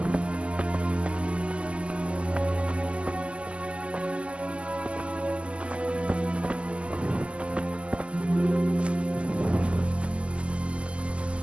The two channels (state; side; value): late; left; 0.055 ms